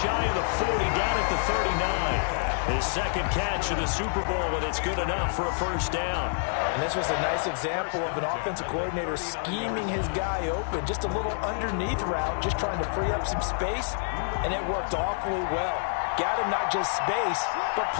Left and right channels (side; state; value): right; silent; digital silence